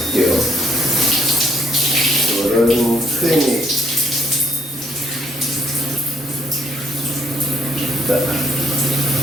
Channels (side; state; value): both; normal; correlation 0.68